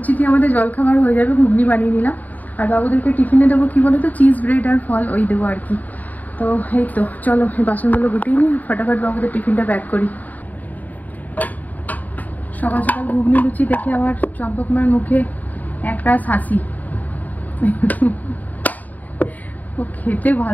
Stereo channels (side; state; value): right; late; 0.079 ms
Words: দিয়ে আমাদের জলখাবার হয়ে যাবে। ঘুগনি বানিয়ে নিলাম, আর বাবুদেরকে টিফিনে দেবো কি বলো তো, চিজ ব্রেড আর ফল ওই দেবো আর কি। তো এই তো চলো এই বাসনগুলো গুটিয়ে নিই, ফটাফট বাবুদের টিফিনটা প্যাক করি। সকাল সকাল ঘুগনি লুচি দেখে আমার চম্পক মার মুখে একটা হাসি। ও খেতে